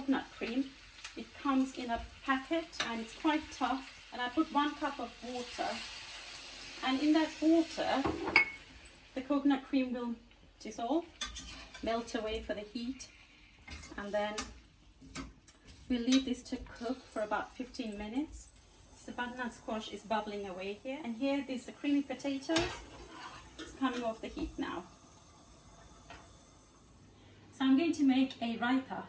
cream. It comes in a packet and it's quite tough. And I put 1 cup of water, and in that water the coconut cream will dissolve, melt away for the heat, and then we'll leave this to cook for about 15 minutes. So the butternut squash is bubbling away here, and here there's the creamy potatoes. It's coming off the heat now. So I'm going to make a raita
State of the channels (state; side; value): identical; both; correlation 1.00